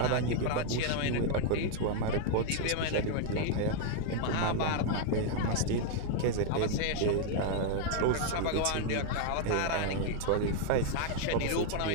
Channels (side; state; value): both; different; correlation 0.00